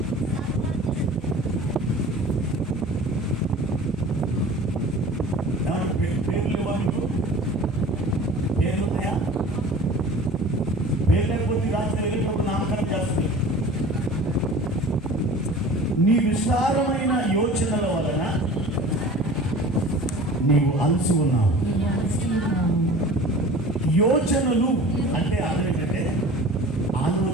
పేర్లు ఇవ్వాలి. పేర్లు ఉన్నాయా? పేరు లేకపోతే రాత్రి వెళ్ళినప్పుడు నామకరణం చేస్తుంది. నీ విస్తారమైన యోచనల వలన నీవు అలసి ఉన్నావు. యోచనలు అంటే అర్థం ఏంటంటే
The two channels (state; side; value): normal; both; correlation 0.42